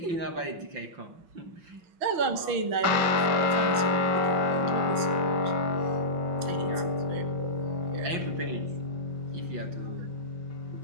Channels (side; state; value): left; late; 6.1 ms